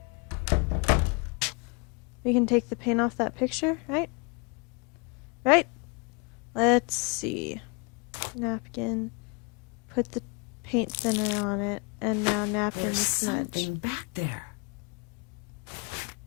We can take the paint off that picture, right? Right? Let's see. Napkin. Put the paint thinner on it. And now napkin There's to smudge. something back there.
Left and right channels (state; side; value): quieter; right; 32.0 dB